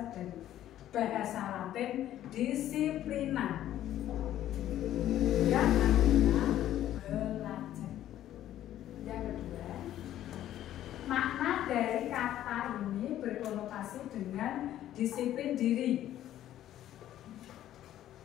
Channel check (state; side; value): quieter; right; 12.4 dB